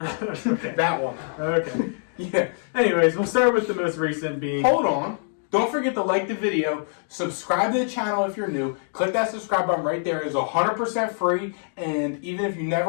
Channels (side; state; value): right; silent; digital silence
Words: Okay. That one. Okay. Yeah. Anyways, we'll start with the most recent being... Hold on. Don't forget to like the video, subscribe to the channel if you're new, click that subscribe button right there. It's 100% free, and even if you